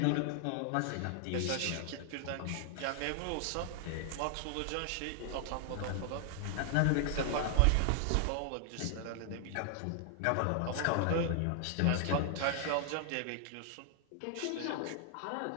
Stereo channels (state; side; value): different; both; correlation 0.00